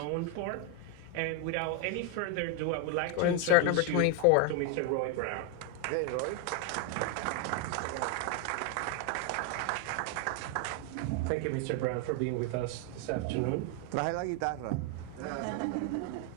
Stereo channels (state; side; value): different; both; correlation 0.01